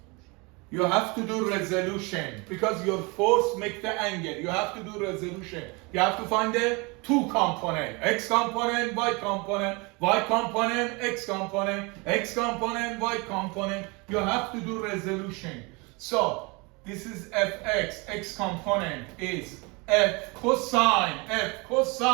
You have to do resolution because your force makes the angle. You have to do resolution. You have to find the two component, x component, y component, y component, x component, x component, y component. You have to do resolution. So this is fx, x component is f cosine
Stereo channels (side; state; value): left; quieter; 28.0 dB